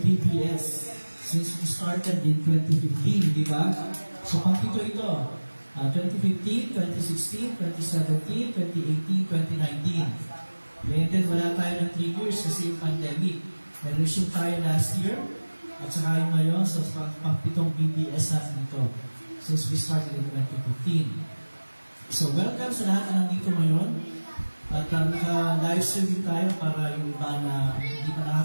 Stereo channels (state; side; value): inverted; both; correlation -1.00